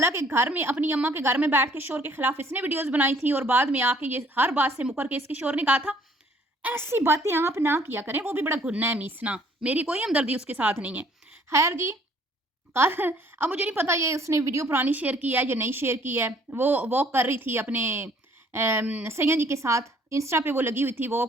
घर में अपनी अम्मा के घर में बैठ के शोर के खिलाफ इसने वीडियोस बनाई थी, और बाद में आके ये हर बात से मुकर के इसके शोर ने कहा था ऐसी बातें आप ना किया करें, वो भी बड़ा गुन्ना है मीसना, मेरी कोई हमदर्दी उसके साथ नहीं है। खैर जी, कल अब मुझे नहीं पता ये उसने वीडियो पुरानी शेयर की है या नहीं शेयर की है। वो वॉक कर रही थी अपने सैयद जी के साथ, इंस्टा पे वो लगी हुई थी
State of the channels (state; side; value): normal; both; correlation 0.60